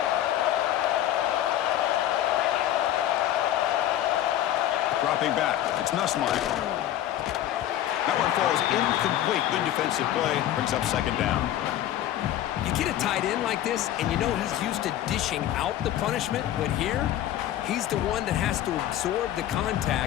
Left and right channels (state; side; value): quieter; right; 12.4 dB